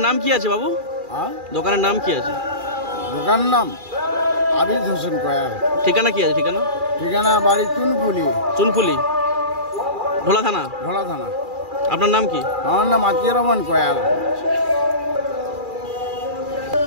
নাম কি আছে বাবু? দোকানের নাম কি আছে? দোকানের নাম আবিদ হোসেন কয়াল। ঠিকানা কি আছে? ঠিকানা ঠিকানা বাড়ি চুনপুলি। চুনপুলি, ঢোলা থানা। ঢোলা থানা। আপনার নাম কি? আমার নাম আতিয়ার রহমান কয়াল।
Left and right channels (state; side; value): late; left; 2.4 ms